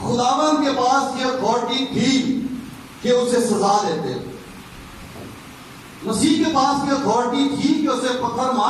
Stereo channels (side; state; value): both; identical; correlation 1.00